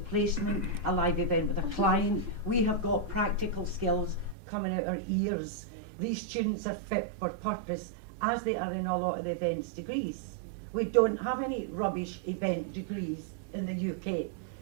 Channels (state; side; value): drops out; left; at 4.4 s